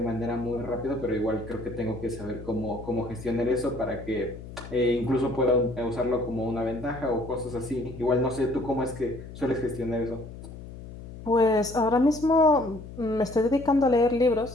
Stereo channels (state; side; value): noise; left; hum, 13 dB below the sound